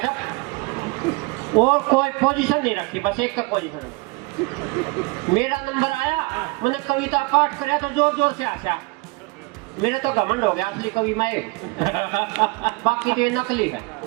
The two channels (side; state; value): left; quieter; 25.4 dB